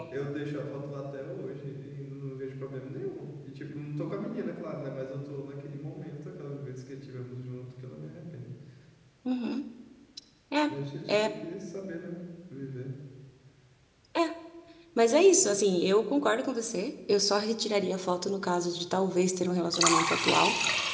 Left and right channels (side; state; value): both; identical; correlation 1.00